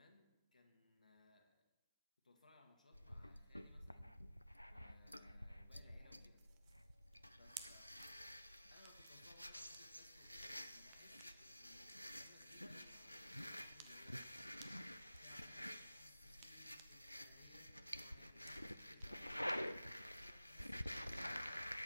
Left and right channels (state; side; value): inverted; both; correlation -0.94